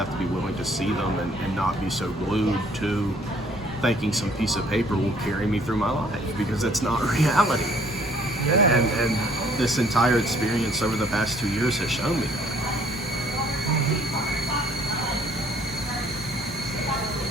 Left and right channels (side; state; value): both; normal; correlation 0.60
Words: to be willing to see them and not be so glued to thinking some piece of paper will carry me through my life, because that's not reality. And this entire experience over the past 2 years has shown me that.